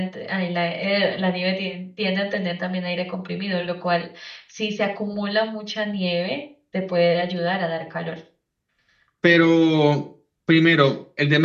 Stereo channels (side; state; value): both; identical; correlation 1.00